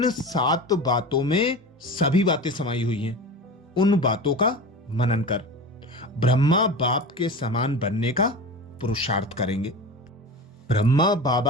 7 बातों में सभी बातें समाई हुई हैं। उन बातों का मनन कर ब्रह्मा बाप के समान बनने का पुरुषार्थ करेंगे। ब्रह्मा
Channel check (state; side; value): normal; both; correlation 0.31